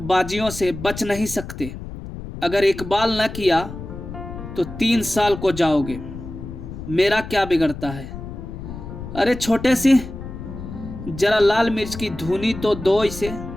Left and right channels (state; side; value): noise; left; rumble, 10 dB below the sound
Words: बाजियों से बच नहीं सकते। अगर इकबाल न किया तो 3 साल को जाओगे। मेरा क्या बिगड़ता है? अरे छोटे सिंह, जरा लाल मिर्च की धुनी तो दो इसे।